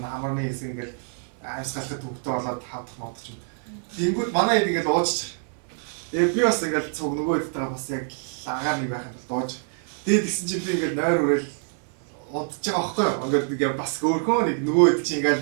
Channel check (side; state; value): left; silent; 61 dB below the other